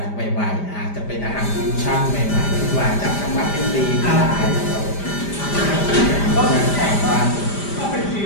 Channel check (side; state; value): right; late; 5.0 ms